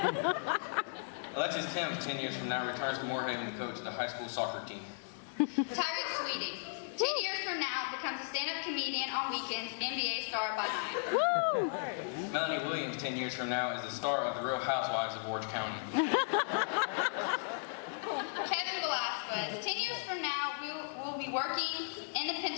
Alexis Timms 10 years from now returns to Moorhaven to coach the high school soccer team. Tyreek Sweeting, 10 years from now, becomes a stand-up comedian on weekends, NBA star by night. Melanie Williams 10 years from now is the star of The Real Housewives of Orange County. Kevin Velasquez, 10 years from now, will be working in the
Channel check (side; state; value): right; silent; digital silence